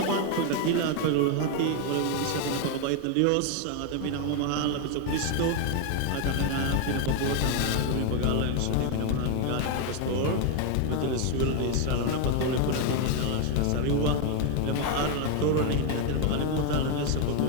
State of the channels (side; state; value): both; different; correlation 0.01